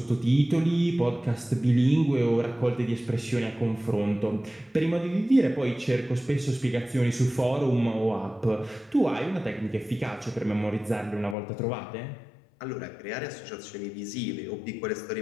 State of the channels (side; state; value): right; drops out; at 11.4 s